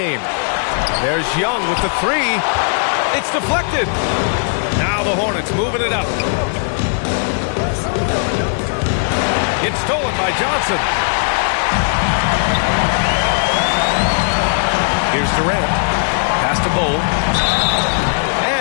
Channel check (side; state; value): right; silent; digital silence